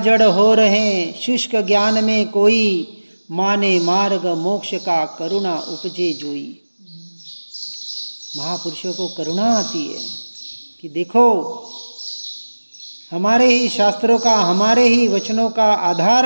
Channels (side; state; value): both; inverted; correlation -1.00